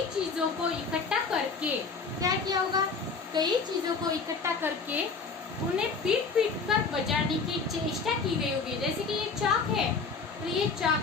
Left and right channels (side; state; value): right; quieter; 4.7 dB